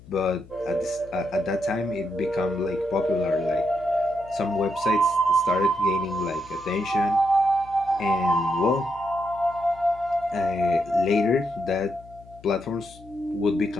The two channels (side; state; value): left; noise; hum, 22 dB below the sound